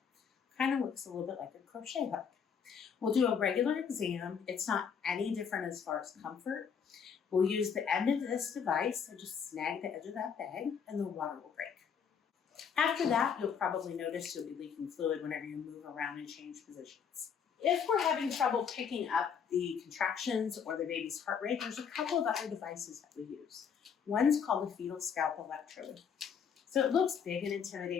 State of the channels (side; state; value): right; quieter; 6.9 dB